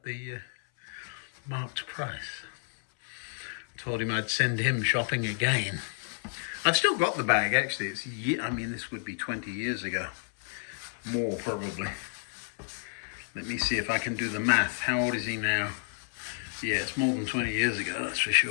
the marked price. Told him I'd send him shopping again. I've still got the bag, actually. I mean, this would be 20 years ago. More, probably. Let me see if I can do the math. How old is he now? Yeah, it's more than 20 years ago, that's for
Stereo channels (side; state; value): right; silent; 57 dB below the other